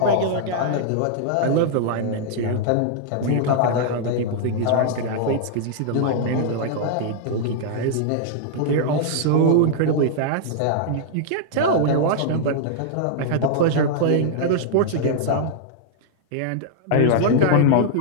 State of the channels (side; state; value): both; different; correlation -0.01